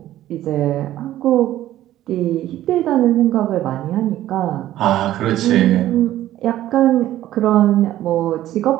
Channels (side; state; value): left; quieter; 13.7 dB